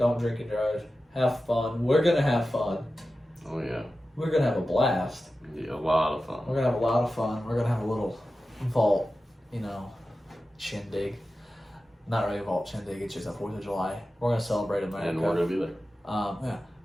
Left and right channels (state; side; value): normal; both; correlation 0.94